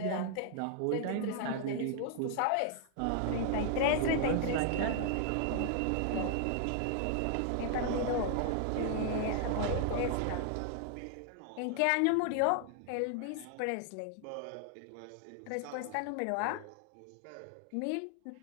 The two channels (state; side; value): different; both; correlation 0.00